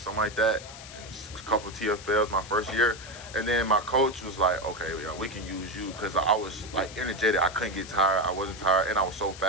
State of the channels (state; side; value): noise; left; hiss, 15 dB below the sound